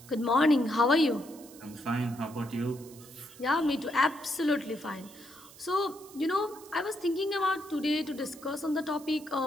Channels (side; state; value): right; noise; hiss, 20 dB below the sound